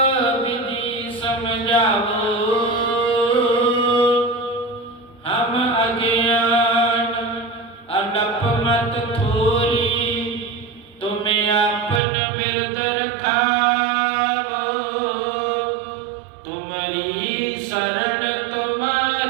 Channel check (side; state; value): left; drops out; at 12.0 s